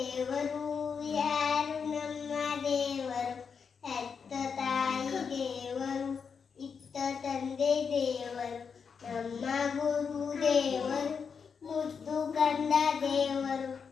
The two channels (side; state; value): right; quieter; 6.1 dB